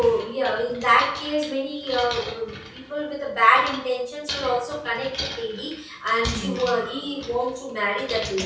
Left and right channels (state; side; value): identical; both; correlation 1.00